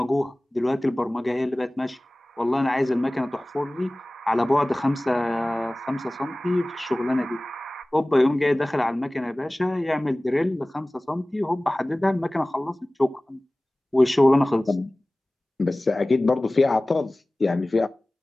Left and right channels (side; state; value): both; normal; correlation 0.98